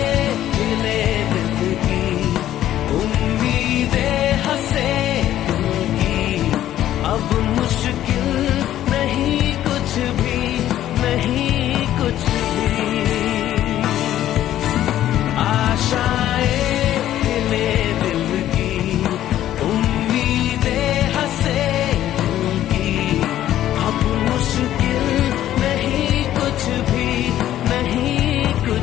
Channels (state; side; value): quieter; right; 12.5 dB